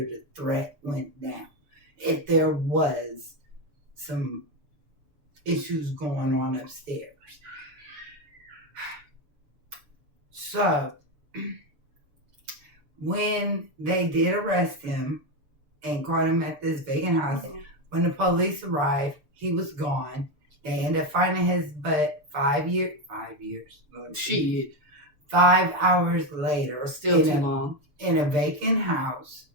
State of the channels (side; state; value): left; late; 6.9 ms